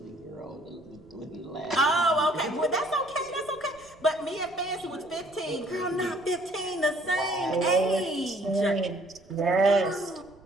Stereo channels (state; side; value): noise; right; rumble, 26 dB below the sound